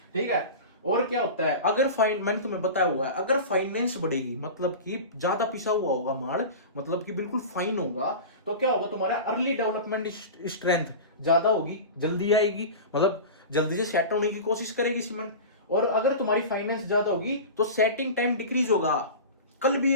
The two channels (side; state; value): both; inverted; correlation -0.30